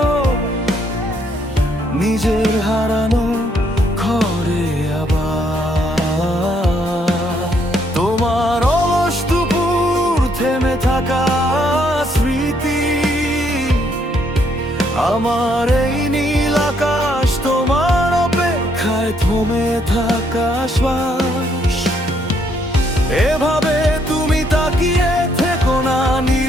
নিজের হারানো ঘরে আবার। তোমার অলস দুপুর থেমে থাকা স্মৃতি, আমার এই নীল আকাশ তোমার অপেক্ষায় থমে থাকা শ্বাস। এভাবে তুমি তাকিয়ে থেকো না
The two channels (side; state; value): both; normal; correlation 0.71